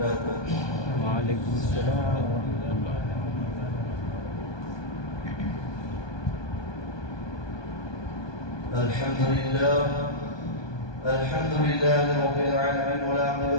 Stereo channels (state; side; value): late; right; 1.2 ms